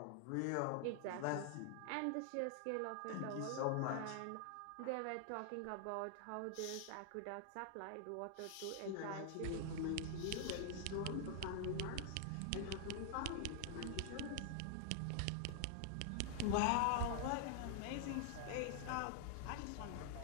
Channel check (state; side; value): different; both; correlation 0.00